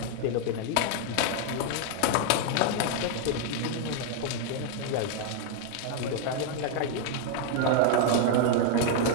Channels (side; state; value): both; different; correlation 0.00